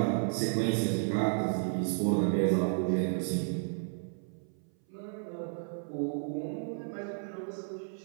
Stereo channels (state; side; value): silent; left; 56 dB below the other